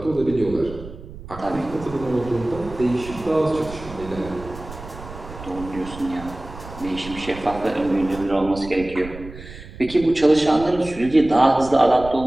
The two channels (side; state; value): right; noise; rumble, 14 dB below the sound